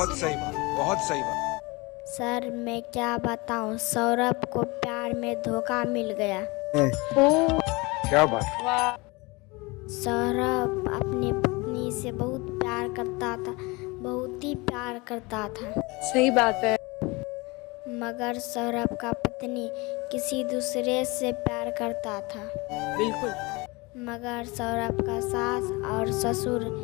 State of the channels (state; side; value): quieter; right; 25.0 dB